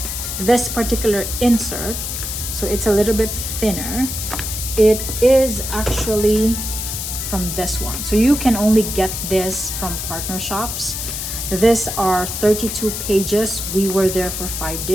this particular insert, so it's a little bit thinner. It is actually from this one. So you can only get this from partner shops. These are 32 pages. We were there for 5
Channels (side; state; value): left; noise; hiss, 5 dB below the sound